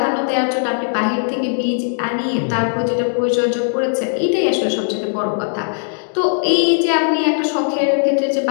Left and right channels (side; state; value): right; silent; digital silence